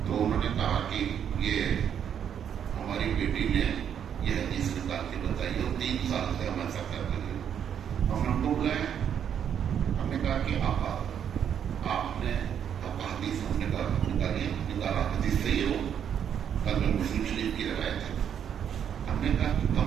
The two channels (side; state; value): left; quieter; 8.7 dB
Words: تو انہوں نے کہا کہ یہ ہماری بیٹی نے یہ حدیث نکال کے بتائی اور 3 سال سے ہم ایسا کر رہے ہیں. ہم نے کو بلایا، ہم نے کہا کہ آپ نے حدیث ہم نے نکالا حدیث صحیح ہو، کل میں مسلم شریف کی روایت ہے. ہم نے کہا کہ